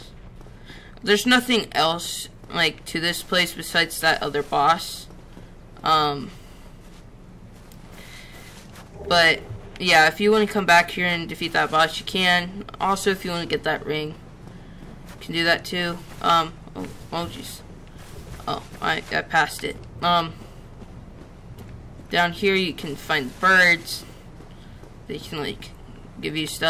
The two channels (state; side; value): identical; both; correlation 1.00